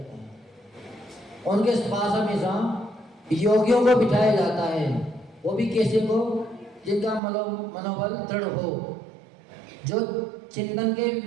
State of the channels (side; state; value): left; drops out; at 7.2 s